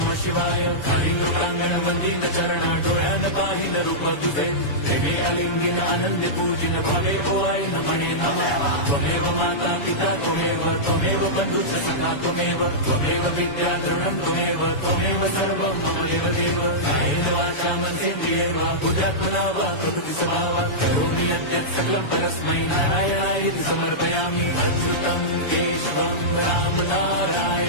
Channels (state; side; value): late; right; 7.0 ms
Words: शिवाय। हरिन्द्रप्राङ्गण मन्दिरचरण डोळ्यान पाहिन रूप तुझे प्रेमे अलिंगिन आनंद पूजिन भावे ओवाय नमणे नमः। त्वमेव माता पिता त्वमेव बन्धुश्च सखा त्वमेव विद्या द्रवणं त्वमेव सर्वं मम देवदेव। कायेन वाचा मनसेन्द्रियैर्वा बुद्ध्यात्मना वा प्रकृति स्वभावात् करोमि यद्यत् सकलं परस्मै नारायणायति समर्पयामि। अच्युतं केशवं